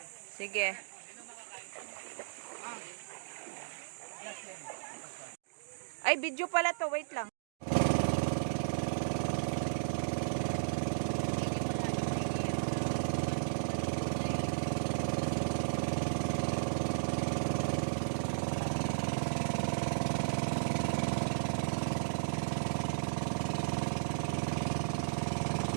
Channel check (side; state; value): left; silent; digital silence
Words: Sige. Ay, video pala to. Wait lang.